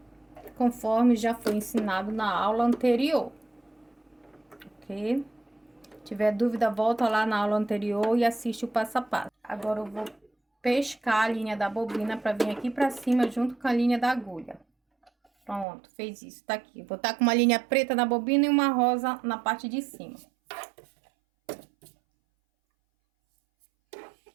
conforme já foi ensinado na aula anterior. Ok? Se tiver dúvida, volta lá na aula anterior e assiste o passo a passo. Agora eu vou pescar a linha da bobina para vir aqui para cima junto com a linha da agulha. Pronto, fez isso, tá aqui. Vou estar com uma linha preta na bobina e uma rosa na parte de cima.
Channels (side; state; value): left; drops out; at 15.7 s